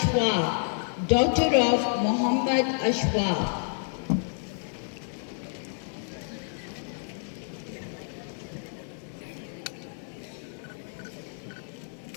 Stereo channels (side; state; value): right; silent; 58 dB below the other